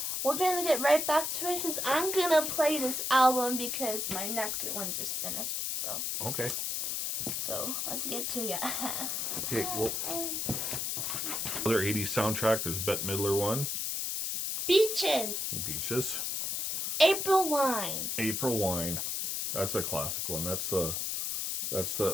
we're gonna get right back to it because I'm gonna play this album because my Nectar one just finished. Okay. So let's get to it. Okay, well, other 80s soundtrack, there's Bette Midler one. Beaches. Beaches. April Wine. April Wine. That's a classic one. That's the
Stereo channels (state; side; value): noise; left; hiss, 1 dB below the sound